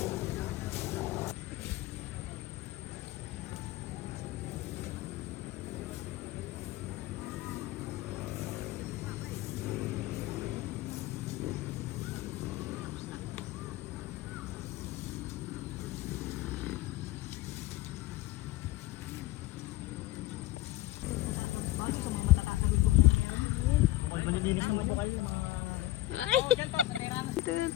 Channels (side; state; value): right; quieter; 15.8 dB